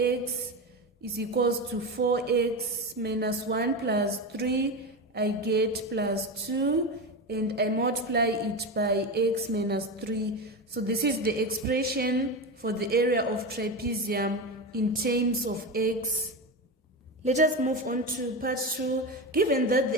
is equals to 4x minus 1 plus 3. I get plus 2. And I multiply it by x minus 3. So this is the expression for the area of trapezium in terms of x. Let us move on to part 2. Given that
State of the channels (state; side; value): normal; both; correlation 0.19